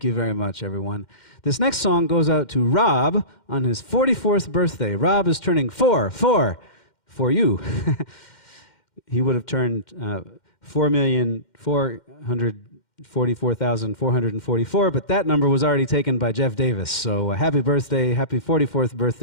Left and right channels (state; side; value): late; right; 2.1 ms